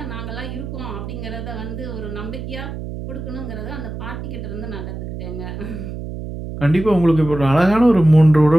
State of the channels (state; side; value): noise; right; hum, 8 dB below the sound